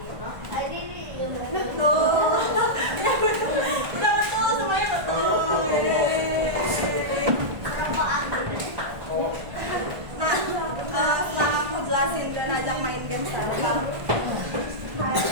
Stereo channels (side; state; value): left; late; 1.5 ms